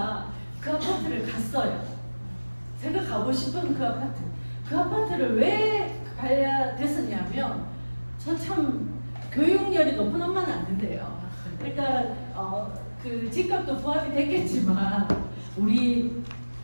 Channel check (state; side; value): inverted; both; correlation -1.00